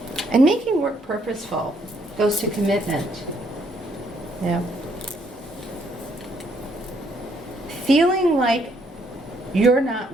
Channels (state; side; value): normal; both; correlation 0.70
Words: And making work purposeful goes to commitment. Feeling like you're not